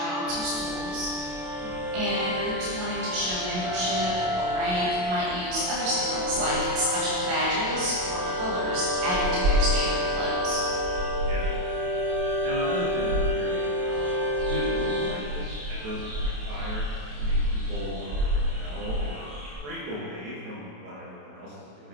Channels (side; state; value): left; late; 27 ms